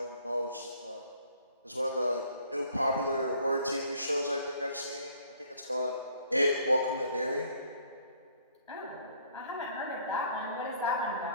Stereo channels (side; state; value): both; inverted; correlation -0.60